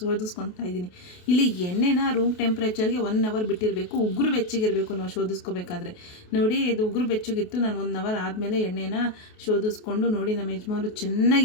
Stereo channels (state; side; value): late; right; 28 ms